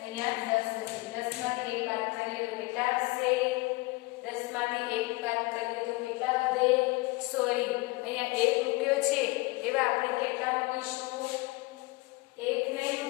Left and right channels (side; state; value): right; quieter; 23.5 dB